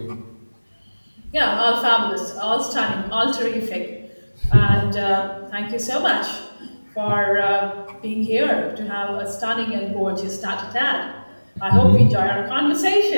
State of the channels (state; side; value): inverted; both; correlation -1.00